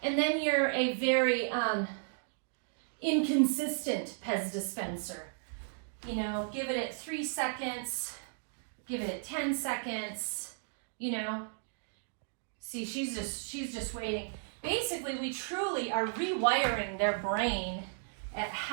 and then you're a very inconsistent Pez dispenser. You know, give it at 3 seconds, give it at 10 seconds, you know. See, she's just waiting. Basically, we truly are rewiring their brain at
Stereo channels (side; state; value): left; silent; digital silence